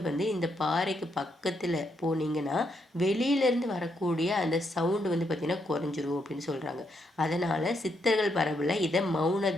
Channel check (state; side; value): normal; both; correlation 0.78